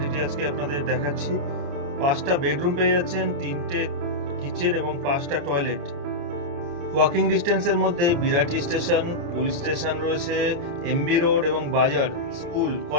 আজকে আপনাদের দেখাচ্ছি। 5টা বেডরুম পেয়ে যাচ্ছেন, 3টে কিচেন এবং 5টা টয়লেট। ওয়াকিং ডিস্টেন্সের মধ্যে বিরাটি স্টেশন, পুলিশ স্টেশন রয়েছে, এমবি রোড এবং বাজার, স্কুল,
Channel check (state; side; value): late; left; 29 ms